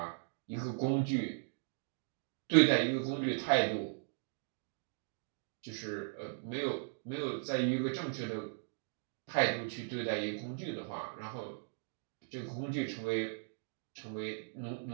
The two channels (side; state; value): left; silent; digital silence